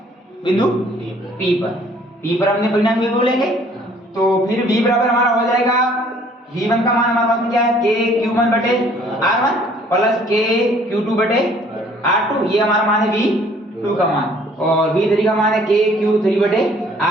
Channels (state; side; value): normal; both; correlation 0.58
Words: बिंदु P पर हमने परिणामी विभव लेंगे। तो फिर V बराबर हमारा हो जाएगा, V1 का मान हमारे पास में क्या है? KQ1 बटे R1 प्लस KQ2 बटे R2, ये हमारा मान है V2 का मान, और V3 का मान है KQ3 बटे